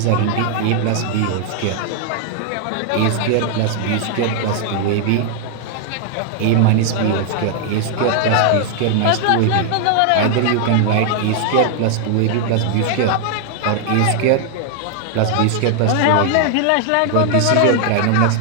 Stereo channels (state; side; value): different; both; correlation 0.00